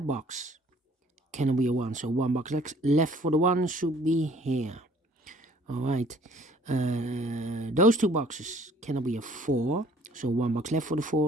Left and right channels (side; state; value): both; normal; correlation 0.56